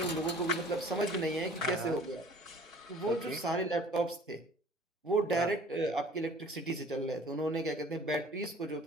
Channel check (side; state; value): both; normal; correlation 0.49